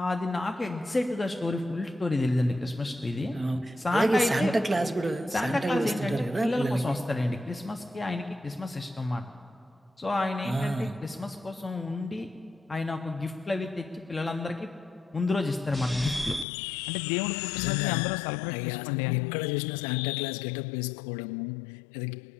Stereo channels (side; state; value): right; drops out; at 16.4 s